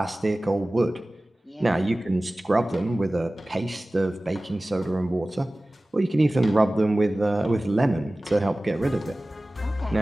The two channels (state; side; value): normal; both; correlation 0.98